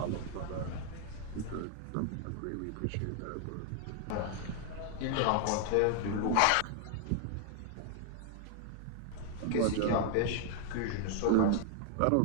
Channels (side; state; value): both; different; correlation 0.00